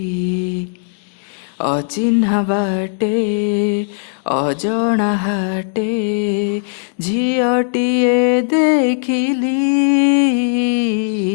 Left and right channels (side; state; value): right; silent; digital silence